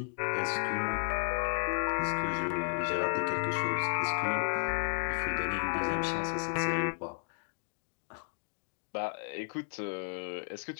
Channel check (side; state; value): right; silent; digital silence